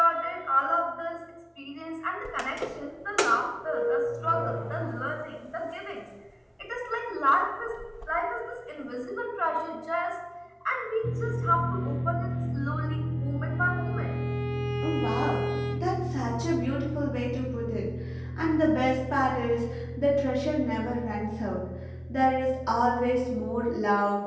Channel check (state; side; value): identical; both; correlation 1.00